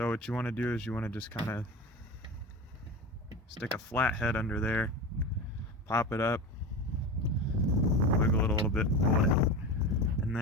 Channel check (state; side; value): normal; both; correlation 0.27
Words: what you want to do is you want to just kind of stick a flathead under there, pop it up, wiggle it a little bit, pull it out. And